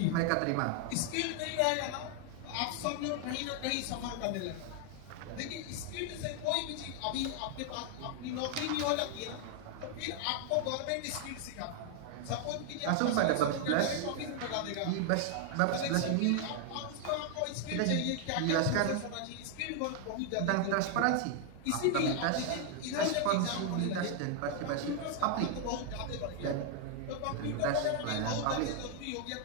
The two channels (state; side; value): different; both; correlation 0.00